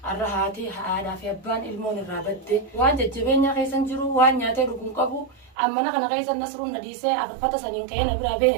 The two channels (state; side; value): drops out; left; at 5.6 s